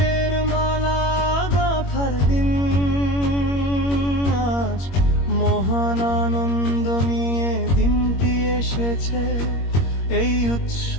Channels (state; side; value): late; right; 21 ms